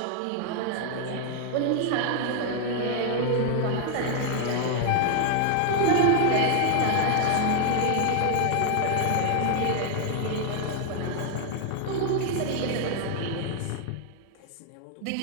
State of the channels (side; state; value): both; different; correlation 0.00